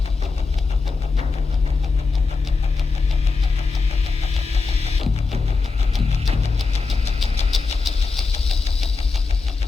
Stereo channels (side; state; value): right; quieter; 4.3 dB